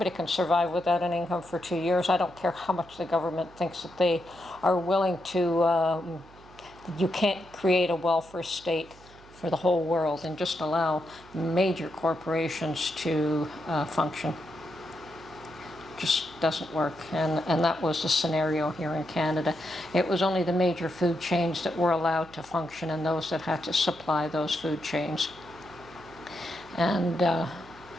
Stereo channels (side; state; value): right; noise; hum, 23 dB below the sound